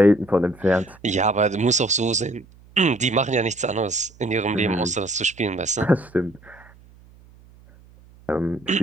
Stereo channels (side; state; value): right; noise; hum, 26 dB below the sound